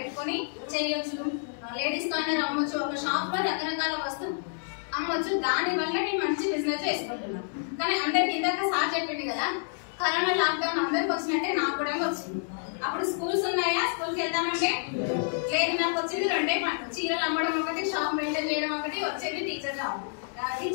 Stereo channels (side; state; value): right; silent; 59 dB below the other